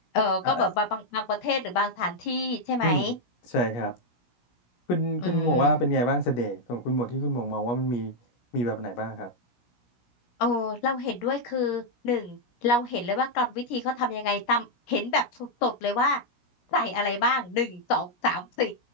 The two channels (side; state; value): right; late; 17 ms